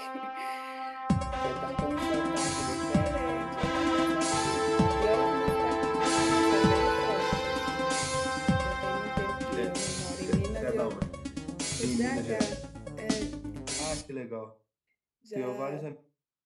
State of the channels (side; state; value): both; identical; correlation 1.00